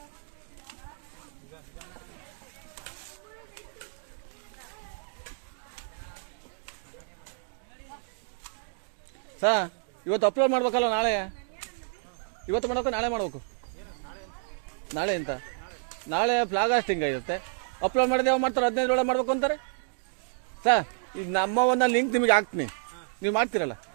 ಸಾ ಇವತ್ತು ಅಪ್ಲೋಡ್ ಮಾಡ್ಬೇಕಲ್ಲ ನಾಳೆ ಇವತ್ತು ಮಾಡ್ಬೇಕು ನಾಳೆ ಮಾಡ್ಬೇಕು ನಾಳೆ ಅಂತ ನಾಳೆ ಫ್ಲಾಗ್ ಹಾಸ್ಟಿಂಗ್ ಇರುತ್ತೆ ಅಪ್ಲೋಡ್ ಮಾಡಿದೆ ಯಾವ ಮಾಡ್ತಾರೆ 15 ಒಳಗೆ ಮಾಡ್ಬೇಕು ಅಂತಾರೆ ಸರ್ ಈಗ ನಮ್ಮ ಒಂದು ಲಿಂಕ್ ನಿಮಗೆ ಹಾಕ್ತೀನಿ ನೀವು ಮಾಡ್ತೀರಲ್ಲ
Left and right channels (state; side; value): silent; left; digital silence